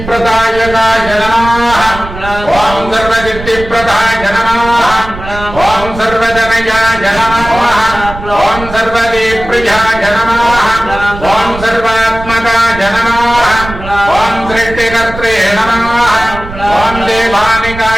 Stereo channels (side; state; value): right; noise; rumble, 11 dB below the sound